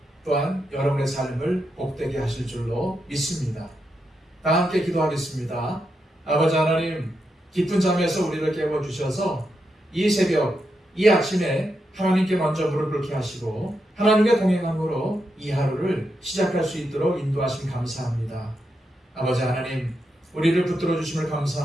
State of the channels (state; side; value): normal; both; correlation 0.84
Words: 또한 여러분의 삶을 복되게 하실 줄로 믿습니다. 다 함께 기도하겠습니다. 아버지 하나님, 깊은 잠에서 우리를 깨워주셔서 이 새벽, 이 아침에 하나님께 먼저 무릎 꿇게 하시고 하나님의 동행함으로 이 하루를 시작할 수 있도록 인도하심 감사합니다. 아버지 하나님, 우리를 붙들어 주심을